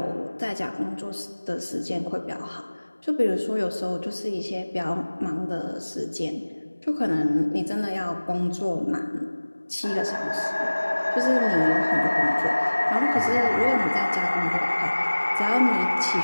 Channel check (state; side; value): inverted; both; correlation -1.00